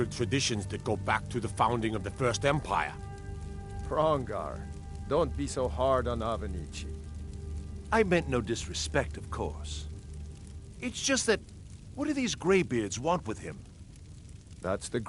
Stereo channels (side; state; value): both; identical; correlation 1.00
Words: traditions that go back to the founding of the First Empire. Hrongar, don't be so hard on Avenici. I meant no disrespect, of course. It's just that, what do these Greybeards want with him? That's the